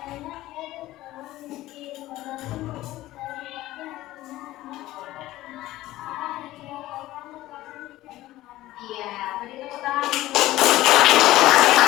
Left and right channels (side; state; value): right; quieter; 16.2 dB